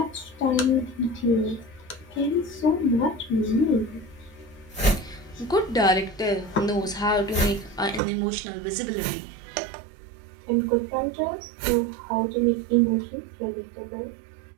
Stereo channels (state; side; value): drops out; left; at 8.0 s